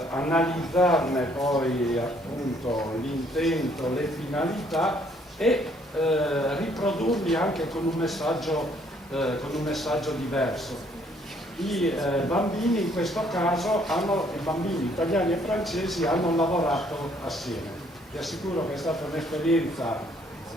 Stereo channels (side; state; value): both; normal; correlation 0.65